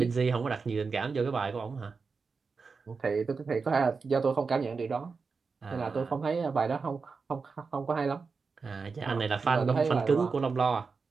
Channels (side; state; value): left; quieter; 4.8 dB